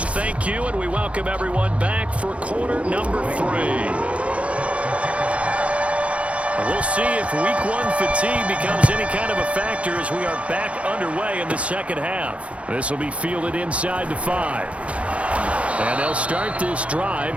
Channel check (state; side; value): late; left; 0.063 ms